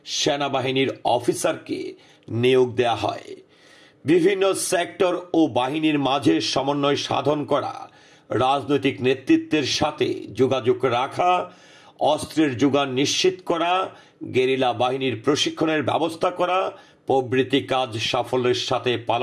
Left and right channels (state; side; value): identical; both; correlation 1.00